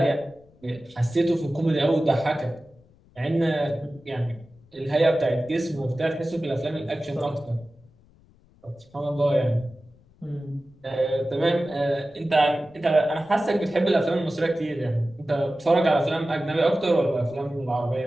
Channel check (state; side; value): noise; left; rumble, 29 dB below the sound